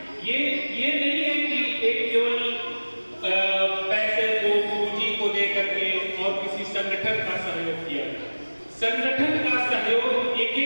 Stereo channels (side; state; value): both; inverted; correlation -1.00